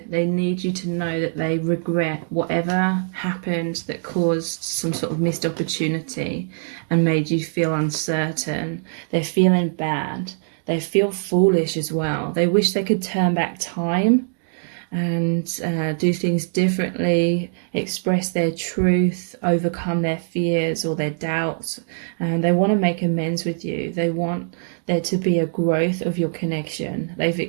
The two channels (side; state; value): left; silent; digital silence